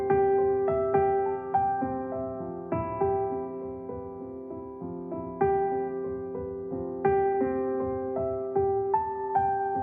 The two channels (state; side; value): identical; both; correlation 1.00